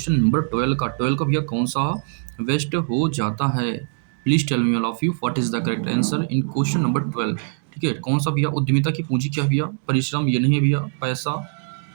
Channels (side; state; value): left; silent; digital silence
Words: number 12 का भैया कौन सा बेस्ट हो जाता है? Please tell me all of you what is the correct answer in question number 12, ठीक है? कौन सा भैया? उद्यमिता की पूंजी क्या है भैया? परिश्रम ये नहीं है भैया, पैसा,